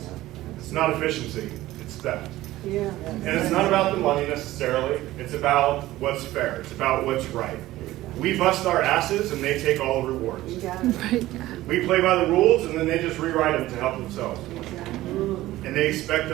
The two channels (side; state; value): left; quieter; 16.2 dB